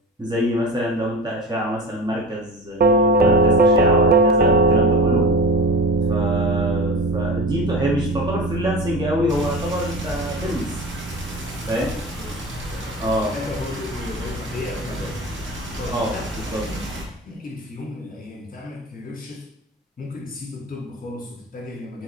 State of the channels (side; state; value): both; normal; correlation 0.32